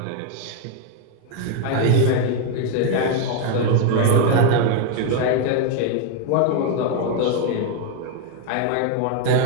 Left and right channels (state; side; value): different; both; correlation 0.01